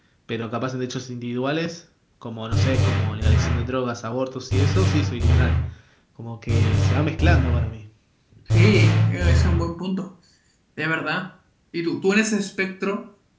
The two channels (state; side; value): identical; both; correlation 1.00